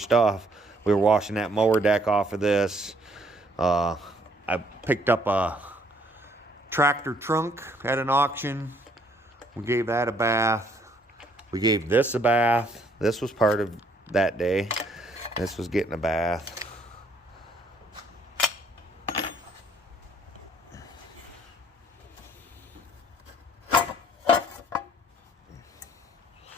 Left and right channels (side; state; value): both; normal; correlation 0.65